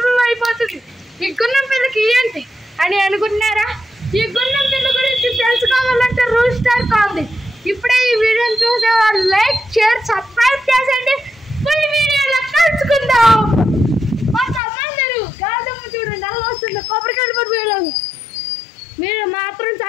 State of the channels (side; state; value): right; drops out; at 14.6 s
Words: అయిపోతుంది. ఈ గున్నం పిల్లకి ఏంటి అని అనుకుంటున్నారా? ఈ గున్నం పిల్ల గురించి తెలుసుకోవాలంటే రూల్ స్టార్ కావాలి. ఇప్పుడే ఈ వీడియోని చూసే వాళ్ళు లైక్, షేర్, సబ్స్క్రైబ్ చేసేయండి. ఫుల్ వీడియోలో కలుసుకుందాం. కొంతమంది గాదమ్మ చూడండి అలా వస్తుంది, కొబ్బరికాయలు పడిపోయేలాగా. మీరు మాత్రం